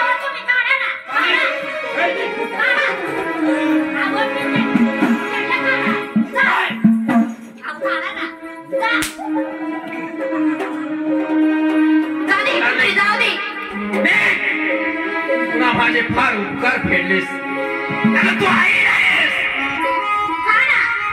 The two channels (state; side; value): identical; both; correlation 1.00